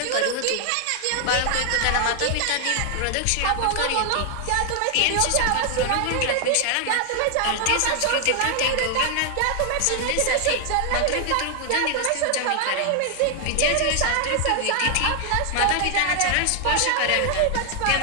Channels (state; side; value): different; both; correlation 0.00